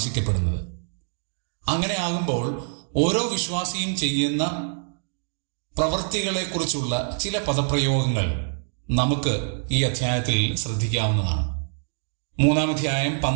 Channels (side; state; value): left; silent; digital silence